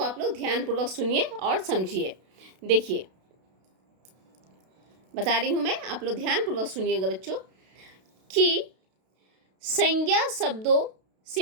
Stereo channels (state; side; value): late; left; 32 ms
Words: आप लोग ध्यानपूर्वक सुनिए और समझिए। देखिए बता रही हूँ मैं, आप लोग ध्यानपूर्वक सुनिएगा बच्चों, कि संज्ञा शब्दों